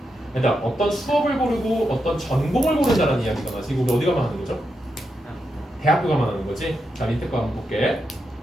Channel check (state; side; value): normal; both; correlation 0.85